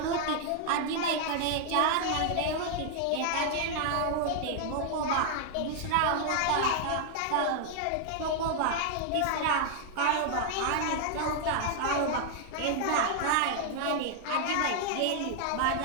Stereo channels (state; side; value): different; both; correlation 0.00